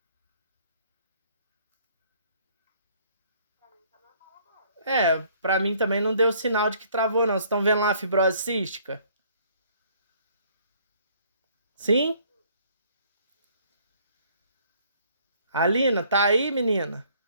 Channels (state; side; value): inverted; both; correlation -0.60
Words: Pra mim também não deu sinal de que travou, não. Vocês estão vendo lá a fibrose cística? Sim? Alina, tá aí, menina?